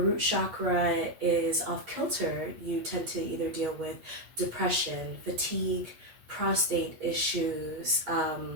chakra is off kilter, you tend to either deal with depression, fatigue, prostate issues,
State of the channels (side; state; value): left; late; 8.5 ms